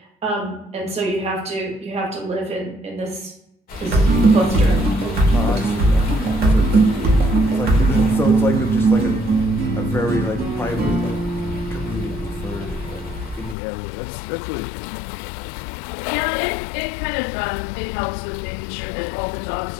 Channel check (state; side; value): drops out; right; at 13.6 s